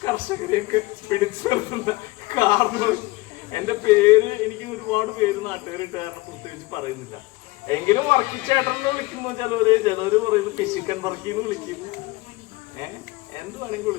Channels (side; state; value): right; quieter; 21.5 dB